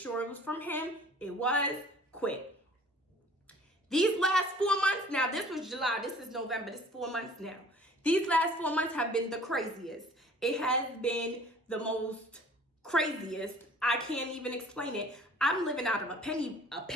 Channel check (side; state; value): both; normal; correlation 0.50